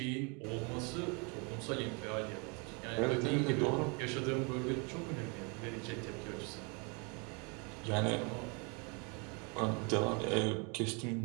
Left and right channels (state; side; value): quieter; left; 32.6 dB